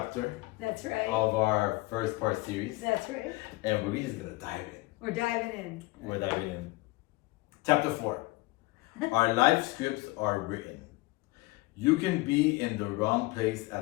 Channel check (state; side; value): quieter; right; 22.1 dB